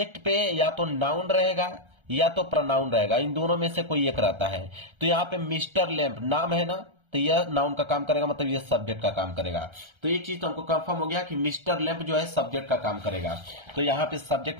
पे या तो नाउन रहेगा या तो प्रोनाउन रहेगा, इन दोनों में से कोई एक रहता है। तो यहाँ पे मिस्टर लैम्प नाम है ना, तो यह नाउन का काम करेगा, मतलब यह सब्जेक्ट का काम करेगा। तो एक चीज तो हमको कंफर्म हो गया कि मिस्टर लैम्प जो है सब्जेक्ट का काम करेगा। तो यहाँ पे सब्जेक्ट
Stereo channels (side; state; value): left; late; 1.3 ms